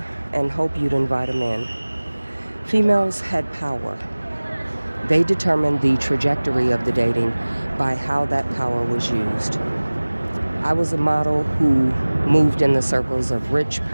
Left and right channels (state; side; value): inverted; both; correlation -1.00